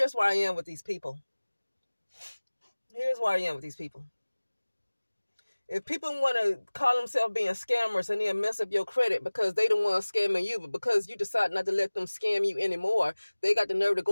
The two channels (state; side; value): inverted; both; correlation -1.00